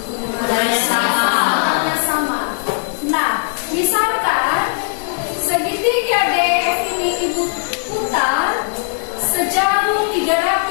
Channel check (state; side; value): silent; right; 63 dB below the other